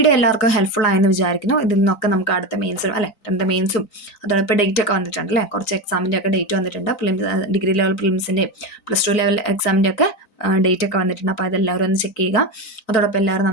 എല്ലാവർക്കും ഹെൽപ്ഫുൾ ആയെന്ന് വിചാരിക്കുന്നു. ഇതിൽ നിന്നൊക്കെ നമുക്ക് അടുത്ത മെയിൻസും അല്ലേ, മെയിൻസും അതോടൊപ്പം ഡേറ്റ് ഒക്കെ വന്നിട്ടുണ്ട് അല്ലേ, കുറച്ച് എക്സാമിൻ്റെ ഒക്കെ ഡേറ്റ് വന്നിട്ടുണ്ട്. ഡിഗ്രി ലെവൽ പ്രിലിംസിൻ്റെയും +2 ലെവൽ എക്സാമിൻ്റെ ഒക്കെ ഡേറ്റ് ഒക്കെ വന്നിട്ടുണ്ട്. അപ്പോൾ അതെല്ലാവരും ഒന്ന് ചെക്ക് ചെയ്യുക. അതോടൊപ്പം എല്ലാവരും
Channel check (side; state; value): right; late; 3.9 ms